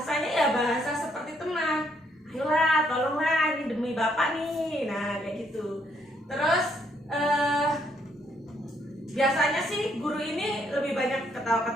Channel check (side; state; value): both; normal; correlation 0.71